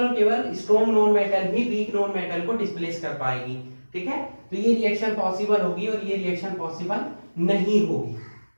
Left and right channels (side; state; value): both; inverted; correlation -1.00